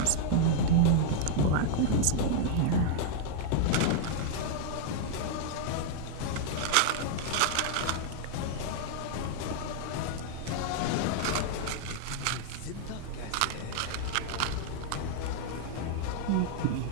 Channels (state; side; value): different; both; correlation -0.01